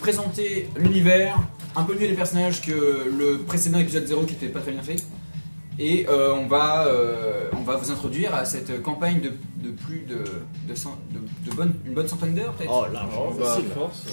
l'univers, un peu mieux les personnages que le précédent épisode 0 qui était pas très bien fait. Et on va vous introduire à cette campagne de plus une bonne centaine d'heures peut-être. Oh, largement facile. Force.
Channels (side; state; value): both; inverted; correlation -1.00